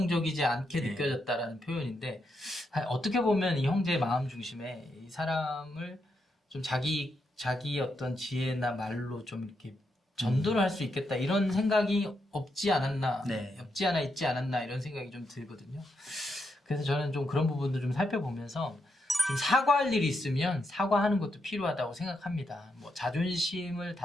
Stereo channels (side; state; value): both; normal; correlation 0.82